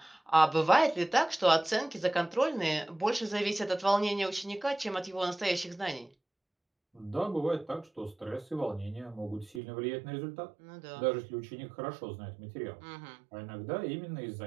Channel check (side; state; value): left; drops out; at 9.6 s